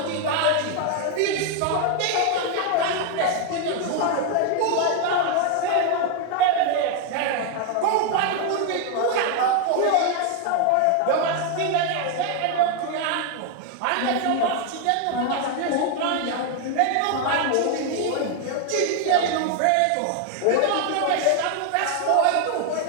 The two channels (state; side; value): different; both; correlation 0.01